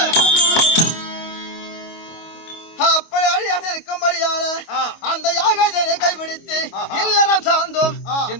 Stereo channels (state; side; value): late; right; 25 ms